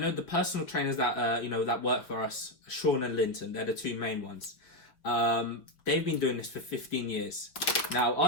the personal trainers that that work for us, Sean and Linton, they're the 2 main ones. They've been doing this for 15 years. Now,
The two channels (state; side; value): late; right; 5.8 ms